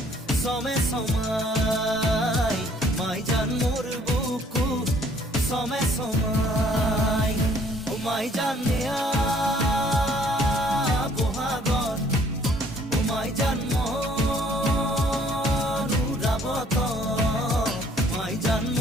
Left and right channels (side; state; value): both; normal; correlation 0.60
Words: সমে সমাই, মাই জান মোর বুকু সমে সমাই। ও মাই জান নেয়া বহাগত, ও মাই জান